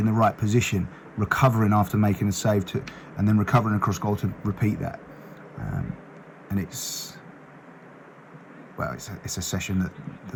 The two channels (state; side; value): identical; both; correlation 1.00